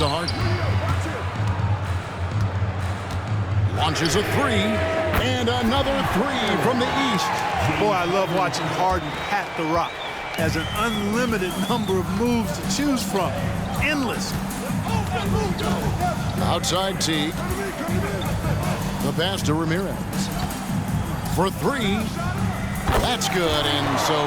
Harden. Launches a 3. And another 3 from the East. Boy, I love watching Harden pat the rock. Has an unlimited number of moves to choose from. Endless. Outside T. The pass to Ramirez. For 3. That's good. And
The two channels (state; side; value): identical; both; correlation 1.00